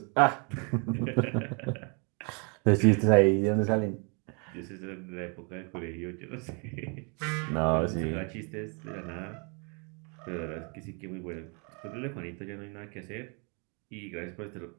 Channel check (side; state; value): left; quieter; 35.3 dB